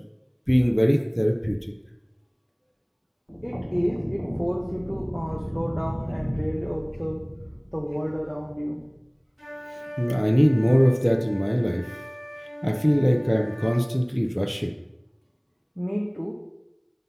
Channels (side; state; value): both; identical; correlation 1.00